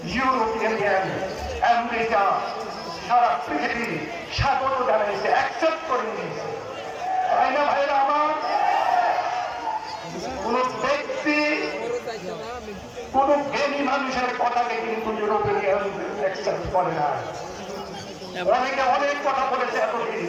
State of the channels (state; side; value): identical; both; correlation 1.00